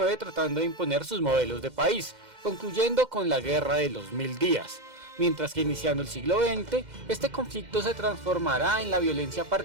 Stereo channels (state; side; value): late; left; 2.1 ms